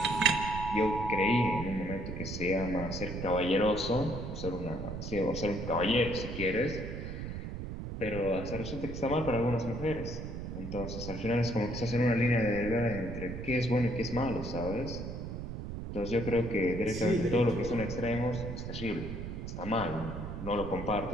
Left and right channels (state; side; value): noise; right; rumble, 7 dB below the sound